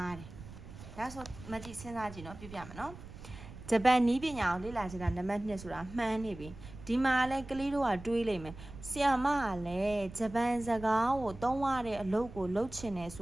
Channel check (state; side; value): noise; right; rumble, 15 dB below the sound